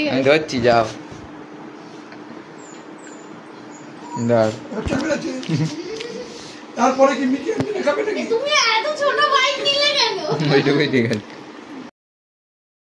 আমি আছে ধরছি, যাও। ধর। তারপরে কি মিকি খাবে নাকি? তুমি এত ছোট বাইক নিলে কেন? ওইটুকুই ঠিক আছে।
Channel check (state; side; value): identical; both; correlation 1.00